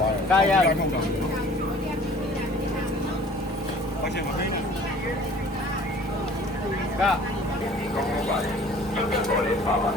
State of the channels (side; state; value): both; normal; correlation 0.49